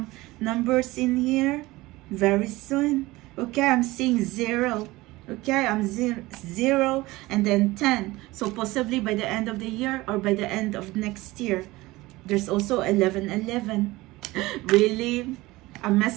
numbers in here? Very soon. Okay, I'm seeing 0. Okay, I'm 0 and then 10. So possibly by the end of the year or by the end of next year. There's also 1111. Really? A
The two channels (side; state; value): left; quieter; 19.9 dB